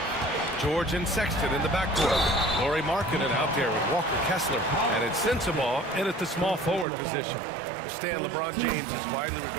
George and Sexton in the backcourt. Lauri Markkanen out there with Walker Kessler. And it's Sensabaugh in at the small forward position. Stan, LeBron James is widely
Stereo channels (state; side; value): drops out; left; at 6.9 s